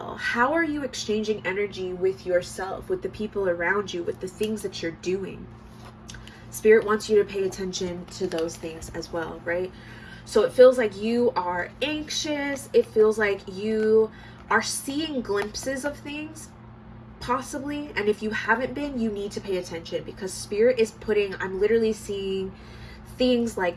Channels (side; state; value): both; identical; correlation 1.00